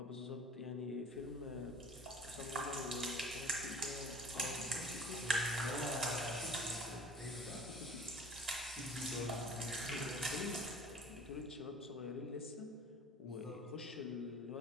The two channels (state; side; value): normal; both; correlation 0.47